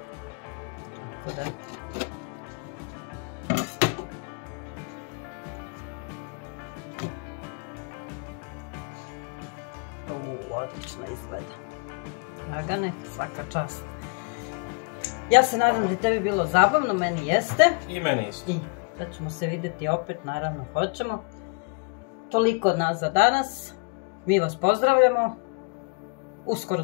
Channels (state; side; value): quieter; right; 34.0 dB